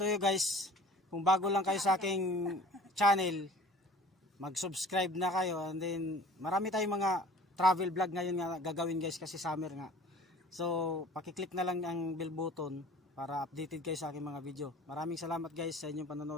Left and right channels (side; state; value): both; normal; correlation 0.47